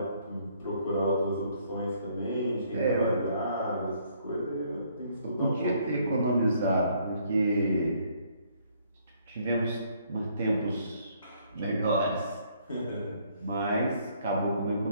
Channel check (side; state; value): both; inverted; correlation -0.66